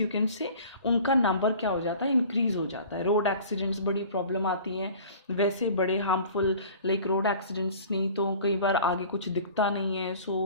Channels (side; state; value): both; inverted; correlation -0.45